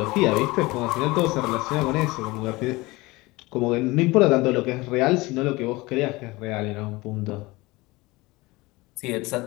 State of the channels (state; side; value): quieter; right; 21.9 dB